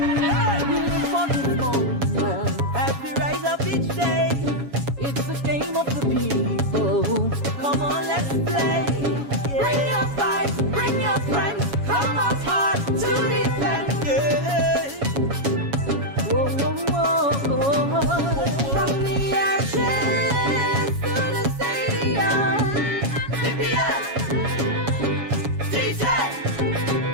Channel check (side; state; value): left; late; 7.2 ms